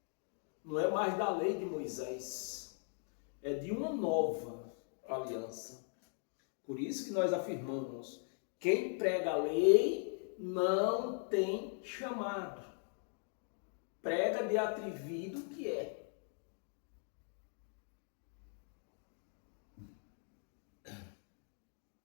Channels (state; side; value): silent; right; 51 dB below the other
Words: Não é mais da lei de Moisés. É de uma nova aliança. Por isso que nós afirmamos, quem prega a lei não tem chamado. Prega de atrevido que é.